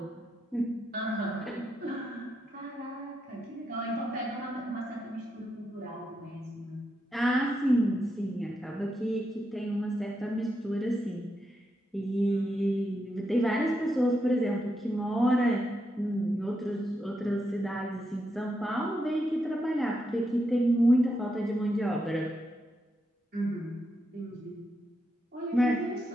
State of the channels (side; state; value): both; normal; correlation 0.83